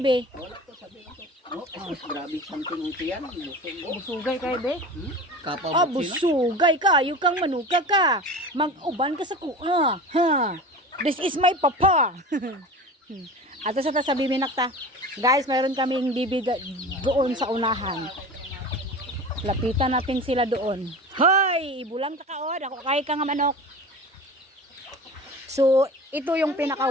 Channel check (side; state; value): both; normal; correlation 0.34